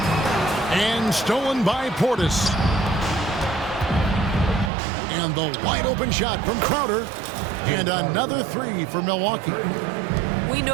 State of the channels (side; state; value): left; drops out; at 4.7 s